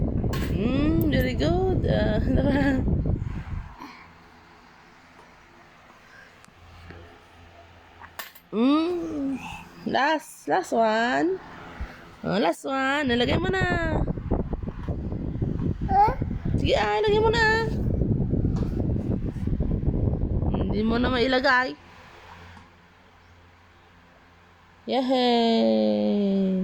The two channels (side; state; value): both; identical; correlation 1.00